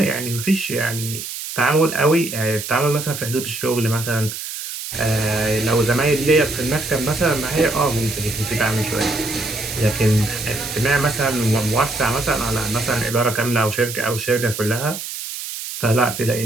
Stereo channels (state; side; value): noise; right; hiss, 7 dB below the sound